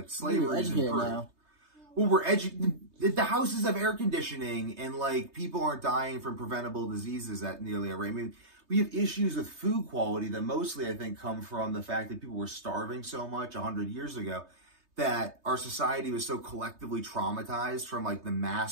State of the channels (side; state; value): left; late; 3.2 ms